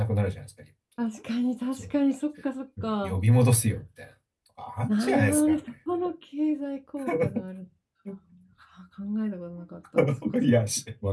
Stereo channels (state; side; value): identical; both; correlation 1.00